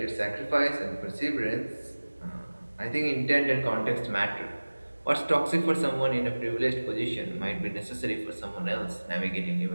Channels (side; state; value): both; inverted; correlation -1.00